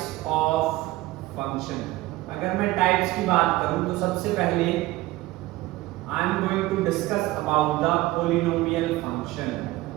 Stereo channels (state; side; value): quieter; left; 18.3 dB